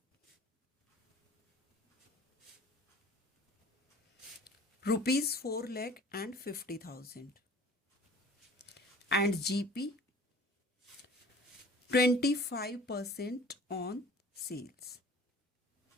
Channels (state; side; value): normal; both; correlation 0.47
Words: ₹4,50,000 and GP 25% on sales.